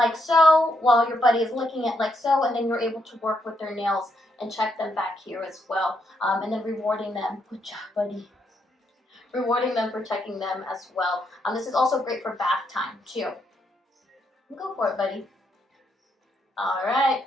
so while your buddy is licking it like so, and then you're able to work with their nails and check them back here as well. And then rewarding them. Good job, buddy. Rewarding them for checking them as well. This is also great for bath time too. Go for it, buddy. All right.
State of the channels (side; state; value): both; normal; correlation 0.77